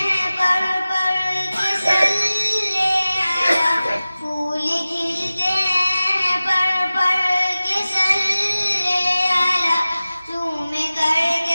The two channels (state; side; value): inverted; both; correlation -0.97